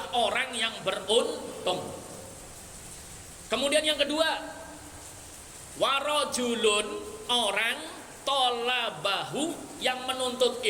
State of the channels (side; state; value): both; identical; correlation 1.00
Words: orang yang beruntung. Kemudian yang kedua, warajulun, orang tolabahu, yang menuntut